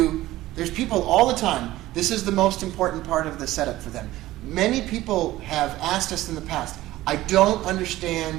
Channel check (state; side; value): quieter; left; 16.2 dB